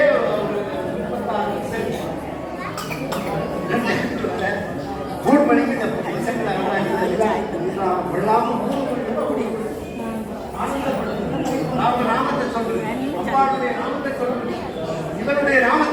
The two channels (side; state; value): both; identical; correlation 1.00